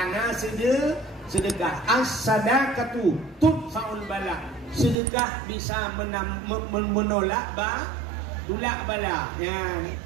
sedekah as-sadaqatu tudfa'ul bala. Sedekah bisa menolak tulak bala. Ya.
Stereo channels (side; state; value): left; drops out; at 5.0 s